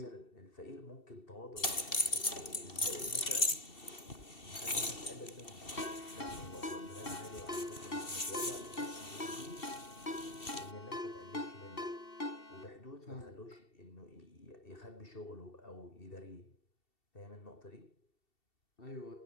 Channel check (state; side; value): late; right; 2.7 ms